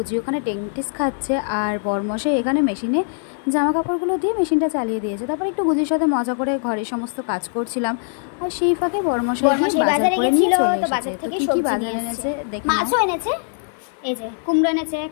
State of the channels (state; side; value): silent; right; 65 dB below the other